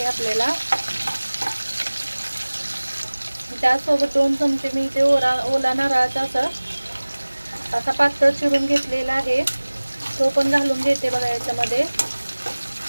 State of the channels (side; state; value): both; inverted; correlation -1.00